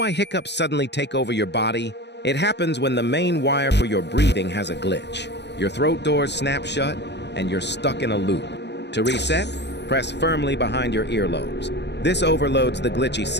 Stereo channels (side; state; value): right; late; 0.50 ms